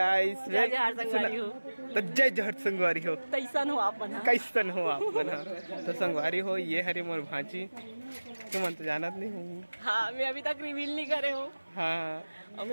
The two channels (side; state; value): both; inverted; correlation -1.00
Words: जय जहर संगवारी हो तो जय जहर संगवारी हो कैसन हो आप बना कैसन हो आप बना तो संगवारी हो ये हरे मोर भांची तुम तो जानत नहीं हूँ। हाँ मैं अभी तक रिवील नहीं करे हूँ। हाँ और